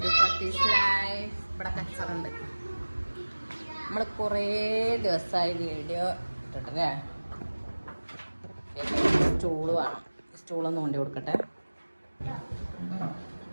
to ഫത്തീസ് life. ഇവിടെ കച്ചറുണ്ട്. നമ്മൾ കുറേ ദിവസമായി വീഡിയോ ഇട്ടിട്ടല്ലേ. സ്റ്റൂള് വേണം, സ്റ്റൂളൊന്ന് കൊണ്ടു കൊടുക്കട്ടെ.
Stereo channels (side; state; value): both; inverted; correlation -1.00